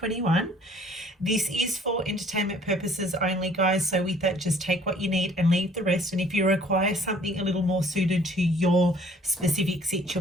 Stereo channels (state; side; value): normal; both; correlation 0.57